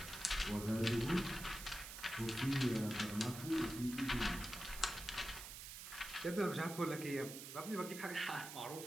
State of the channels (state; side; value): noise; right; hiss, 10 dB below the sound